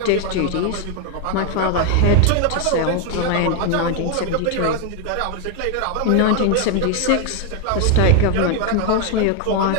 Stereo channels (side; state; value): both; different; correlation 0.01